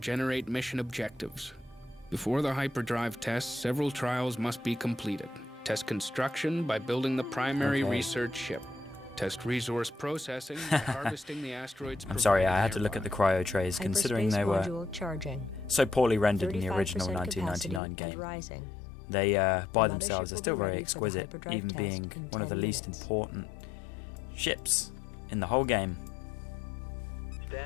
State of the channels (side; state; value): right; drops out; at 17.8 s